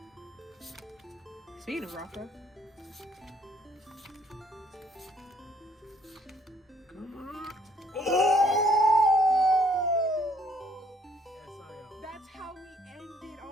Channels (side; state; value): both; normal; correlation 0.64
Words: Speaking of Rothro, Come on. Oh! that's how we end it